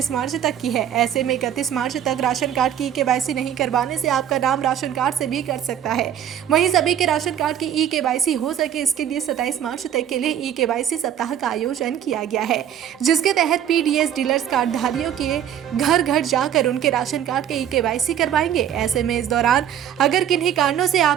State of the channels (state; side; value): quieter; left; 9.9 dB